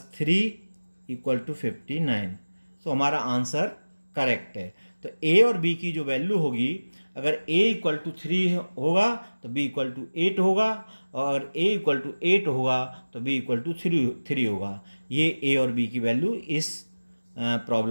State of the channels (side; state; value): both; inverted; correlation -1.00